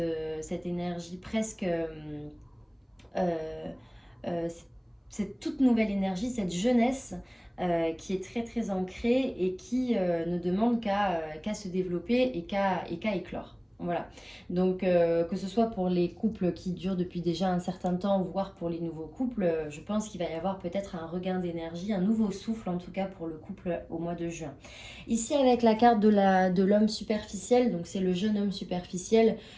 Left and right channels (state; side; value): identical; both; correlation 1.00